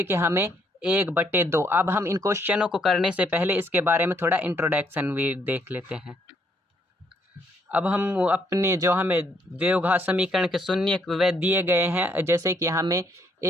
कि हमें 1/2। अब हम इन क्वेश्चनों को करने से पहले इसके बारे में थोड़ा इंट्रोडक्शन भी देख लेते हैं। अब हम अपने जो हमें द्विघात समीकरण के शून्य वे दिए गए हैं, जैसे कि हमें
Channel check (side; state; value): both; normal; correlation 0.70